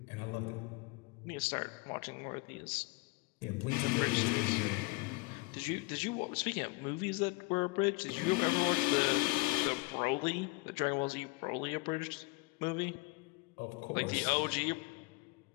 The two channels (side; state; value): right; quieter; 25.4 dB